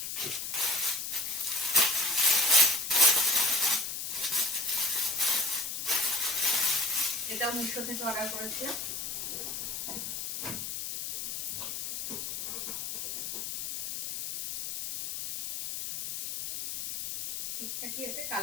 এটাও মিশো থেকে অর্ডার করেছিলাম। ঠিকঠাকই এসে,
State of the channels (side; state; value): left; noise; hiss, 5 dB below the sound